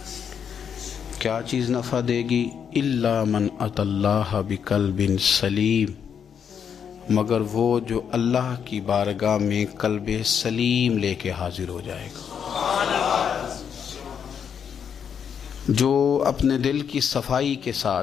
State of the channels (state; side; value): quieter; right; 7.6 dB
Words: क्या चीज़ नफ़ा देगी? इल्ला मन अतल्लाह बिक़ल्बिन सलीम, मगर वो जो अल्लाह की बारगाह में कल्ब सलीम लेके हाजिर हो जाएगा, जो अपने दिल की सफाई के